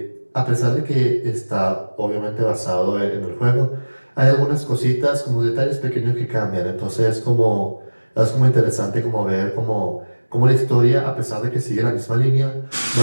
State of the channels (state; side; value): inverted; both; correlation -1.00